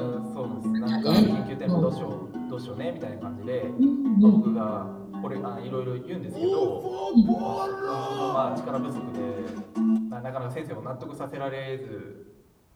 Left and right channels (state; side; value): identical; both; correlation 1.00